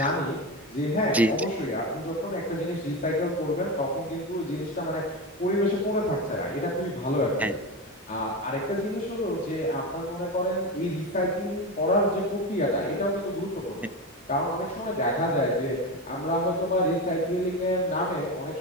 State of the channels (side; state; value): both; normal; correlation 0.19